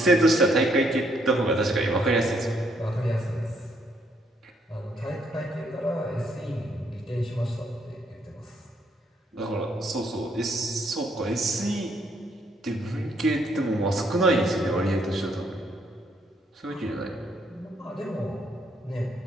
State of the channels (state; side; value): normal; both; correlation 0.71